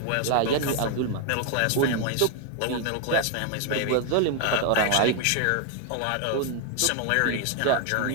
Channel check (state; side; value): different; both; correlation 0.00